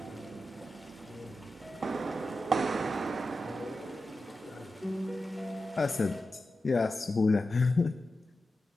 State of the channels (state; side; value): normal; both; correlation 0.91